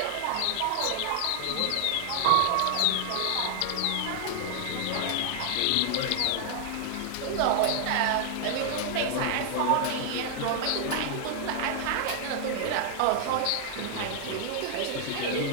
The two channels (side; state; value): both; different; correlation 0.00